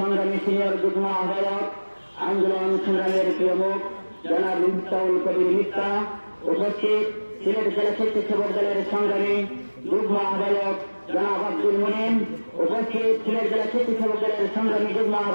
সিনিয়র যুগ্ম আহ্বায়ক আন্দোলন সংগ্রামের প্রিয় মুখ জনাব মিফতাহুল কবির মিথ্যা, উপস্থিত সিলেট জেলা স্বেচ্ছাসেবক দলের সংগ্রামী যুগ্ম আহ্বায়ক জনাব আব্দুল মুনিম, উপস্থিত সিলেট জেলা স্বেচ্ছাসেবক দলের সংগ্রামী যুগ্ম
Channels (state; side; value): inverted; both; correlation -1.00